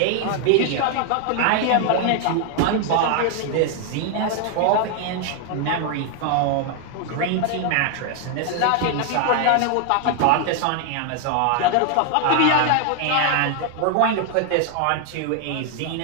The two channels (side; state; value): both; different; correlation 0.00